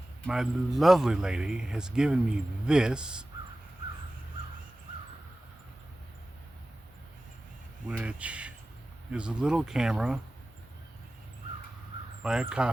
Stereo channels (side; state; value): both; normal; correlation 0.96